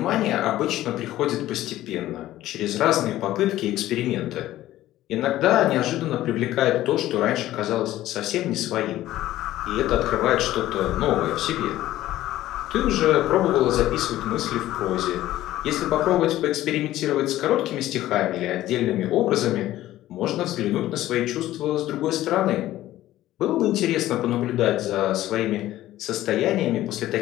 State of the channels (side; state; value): right; quieter; 14.6 dB